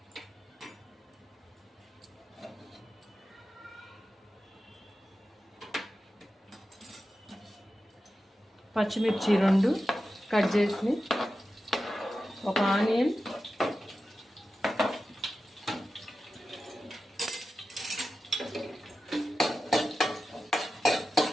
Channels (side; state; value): both; normal; correlation 0.92